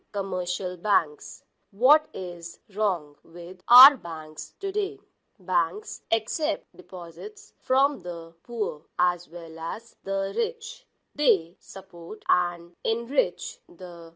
commercial banks. What is wrong with our banks today? Banks accept deposits from the poor as well as the rich. They support and enrich the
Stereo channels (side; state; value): both; identical; correlation 1.00